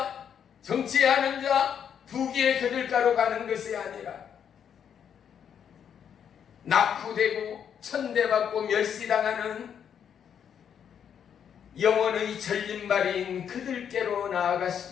정치하는 자, 부귀의 거들가로 가는 것이 아니라 낙후되고 천대받고 멸시당하는 영혼의 절림발인 그들께로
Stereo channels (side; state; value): right; quieter; 8.3 dB